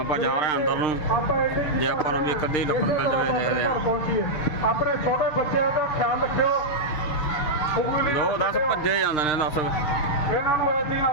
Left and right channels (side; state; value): right; late; 6.6 ms